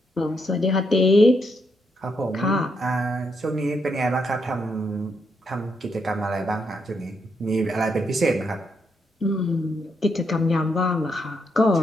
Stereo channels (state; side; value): normal; both; correlation 0.79